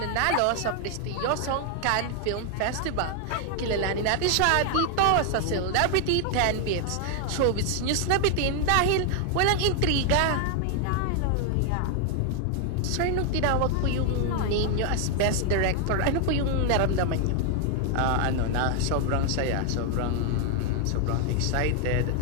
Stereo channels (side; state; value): both; different; correlation 0.00